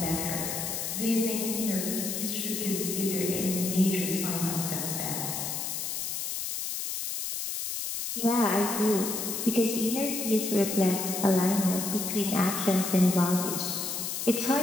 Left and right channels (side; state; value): left; noise; hiss, 3 dB below the sound